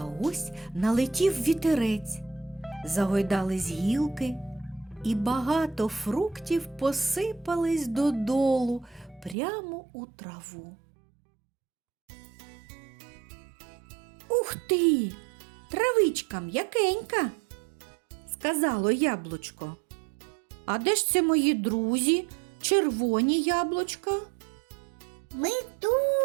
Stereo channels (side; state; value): left; drops out; at 9.3 s